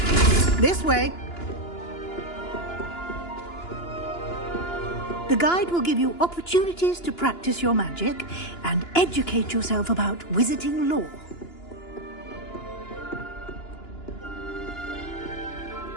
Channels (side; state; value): right; late; 2.9 ms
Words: This way. The guide will give you opportunities to practice your magic and educate yourself about wizarding lore.